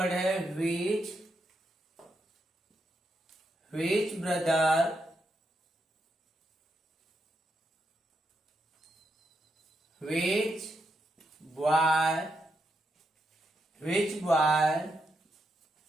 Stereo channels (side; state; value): both; normal; correlation 0.82